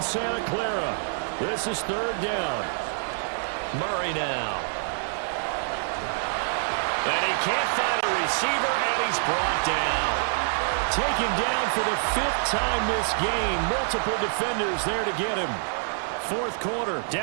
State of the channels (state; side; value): silent; left; digital silence